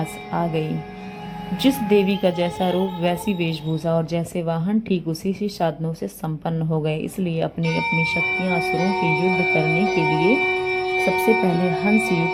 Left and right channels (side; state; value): both; identical; correlation 1.00